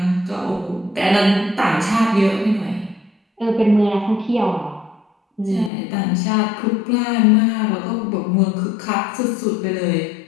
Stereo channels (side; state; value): right; drops out; at 5.7 s